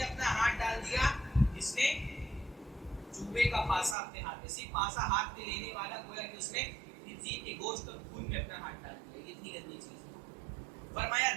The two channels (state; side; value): drops out; left; at 4.0 s